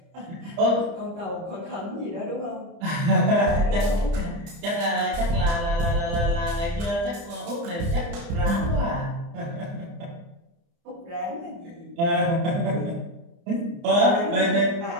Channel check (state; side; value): late; left; 30 ms